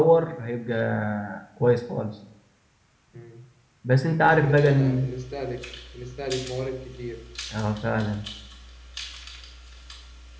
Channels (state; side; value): identical; both; correlation 1.00